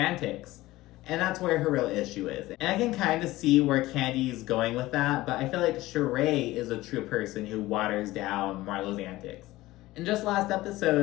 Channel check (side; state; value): right; quieter; 17.7 dB